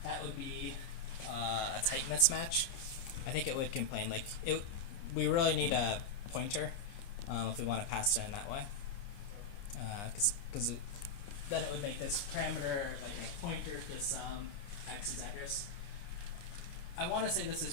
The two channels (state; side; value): late; right; 29 ms